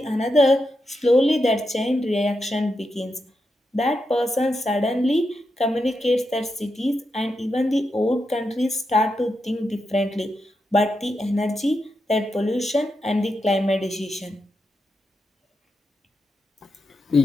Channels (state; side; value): normal; both; correlation 0.86